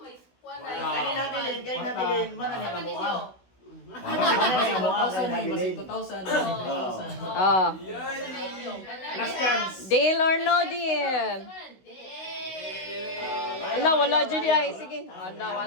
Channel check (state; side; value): late; right; 16 ms